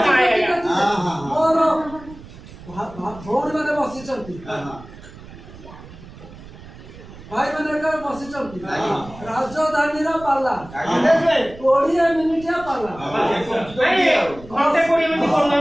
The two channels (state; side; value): noise; right; rumble, 17 dB below the sound